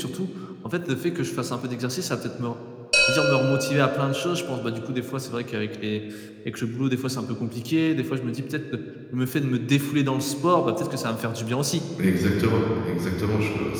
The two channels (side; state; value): both; identical; correlation 1.00